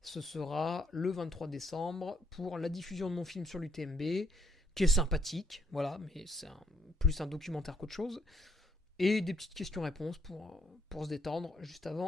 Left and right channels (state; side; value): normal; both; correlation 0.69